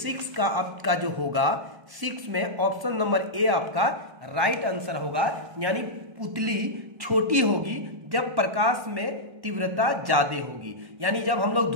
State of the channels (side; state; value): left; late; 1.1 ms